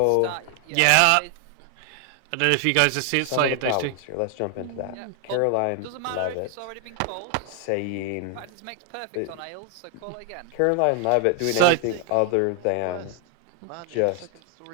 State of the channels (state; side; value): different; both; correlation 0.00